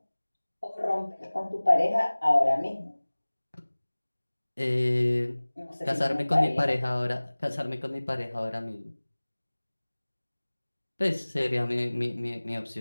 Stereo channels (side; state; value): both; inverted; correlation -1.00